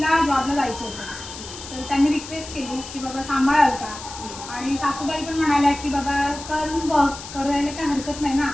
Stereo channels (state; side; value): noise; left; hiss, 12 dB below the sound